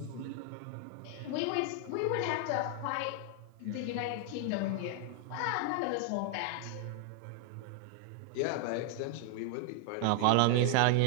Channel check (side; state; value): both; different; correlation 0.00